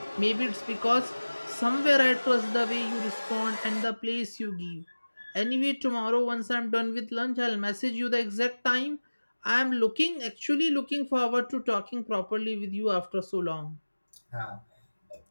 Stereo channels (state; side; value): inverted; both; correlation -1.00